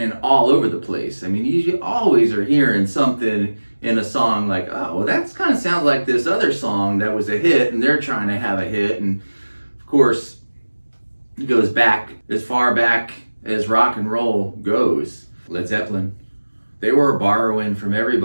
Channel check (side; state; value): both; inverted; correlation -1.00